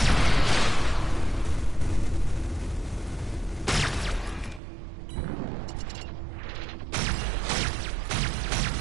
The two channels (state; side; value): drops out; left; at 4.6 s